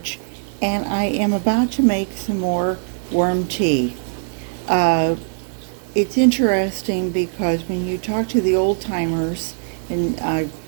and I am about to make some more worm tea. Uh, it's interesting because when you talk to the old timers, and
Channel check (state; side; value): silent; left; 60 dB below the other